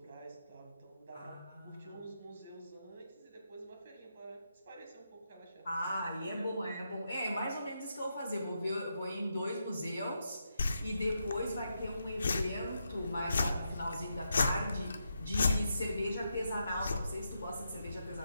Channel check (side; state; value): both; inverted; correlation -0.83